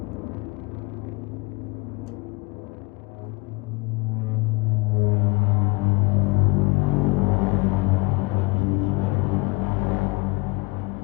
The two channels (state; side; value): quieter; right; 27.0 dB